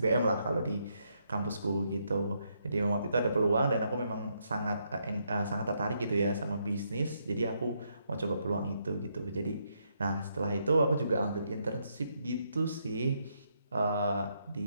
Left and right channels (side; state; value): both; inverted; correlation -0.77